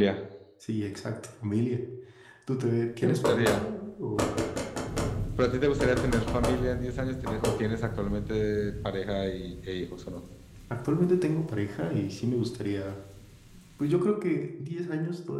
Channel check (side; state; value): both; identical; correlation 1.00